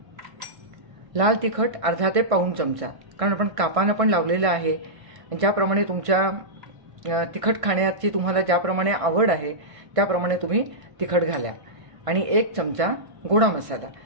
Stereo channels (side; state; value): left; late; 1.6 ms